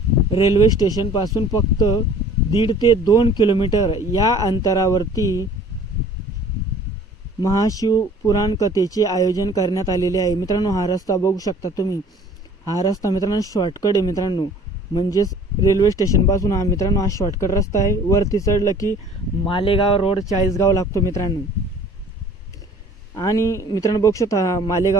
रेल्वे स्टेशन पासून फक्त 1.5 ते 2 किलोमीटर या अंतरावरती महाशिव पुराण कथेचे आयोजन करण्यात आलेले आहे मित्रांनो। हा रस्ता बघू शकता तुम्ही, हा रस्ता मित्रांनो शॉर्टकट आहे मित्रांनो। म्हणजेच रेल्वे स्टेशन पासून हा मित्रांनो हा शॉर्टकट रस्ता आहे। वरती चढलं की मालेगाव रोड चाळीसगाव लागतो मित्रांनो। आणि मित्रांनो बघू शकता,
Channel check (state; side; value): normal; both; correlation 0.50